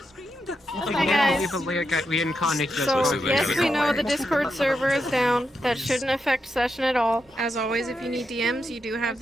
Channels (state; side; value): normal; both; correlation 0.85